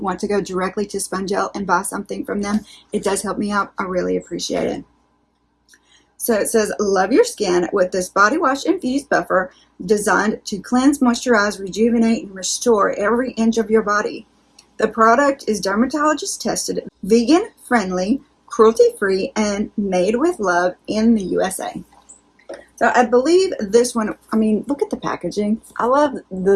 to go directly to Spongelle and buy something from them, it does help me out. I really appreciate it. So it says, love your skin with this body wash infused buffer designed to cleanse, moisturize, rejuvenate, and restore every inch of your body. The product is dermatologist tested, vegan friendly, cruelty-free, and made with love in the USA. So I believe this one, I mean, look at the packaging. I love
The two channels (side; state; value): both; identical; correlation 1.00